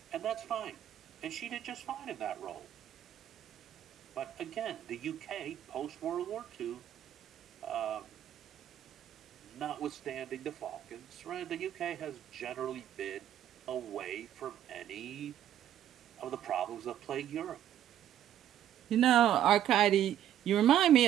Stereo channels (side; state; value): left; quieter; 11.1 dB